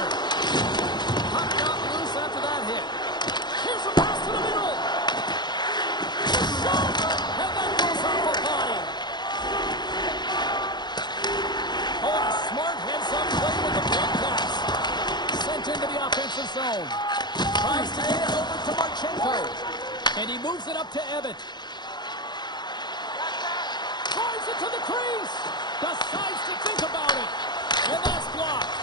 Puck got loose after that hit. Here's a pass to the middle. Shot! And that goes off a body. Oh, a smart heads-up play with the big pass. Sent into the offensive zone. Tries to get it over to Marchenko. And he moves it up to Ebbett. Drives it to the crease. Decides to think about it. And that's blocked.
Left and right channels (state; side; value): late; right; 0.21 ms